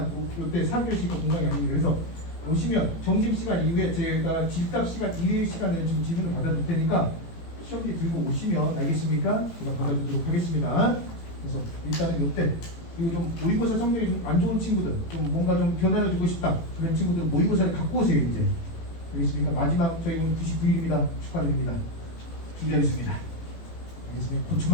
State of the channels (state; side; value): late; right; 18 ms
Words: 요때 4교시가 공강이 아닙니다. 그래서 오시면 점심시간 이후에 제가 질답 시간 이외의 시간에 좀 질문을 받아줄 테니까 시험지 들고 오시면 알겠습니까? 제가 받아주도록 하겠습니다. 그래서 일단은 요때 그리고 좀 모의고사 성적이 좀 안 좋은 친구들 좀 뭔가 좀 변화를 주고 싶다 그런 친구들 모의고사를 갖고 오세요 이제. 알겠습니까? 마지막 저희 오늘 99일입니다. 축하드립니다. 준비하겠습니다. 알겠습니까? 그